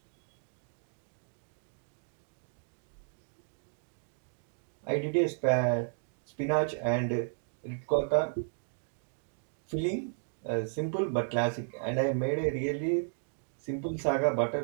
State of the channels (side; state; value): left; silent; digital silence